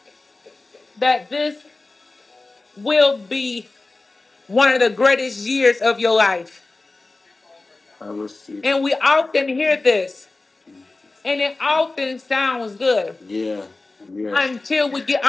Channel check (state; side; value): quieter; right; 3.3 dB